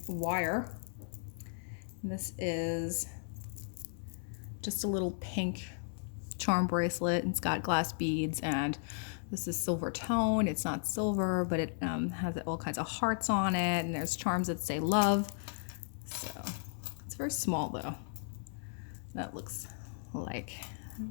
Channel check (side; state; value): right; silent; digital silence